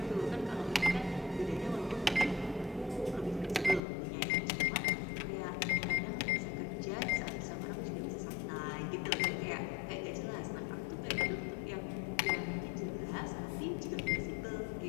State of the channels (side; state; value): right; drops out; at 3.8 s